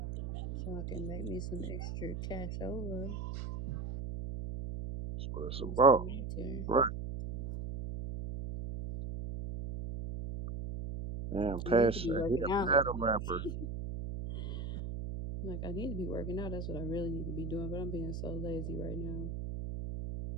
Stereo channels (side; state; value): right; noise; hum, 5 dB below the sound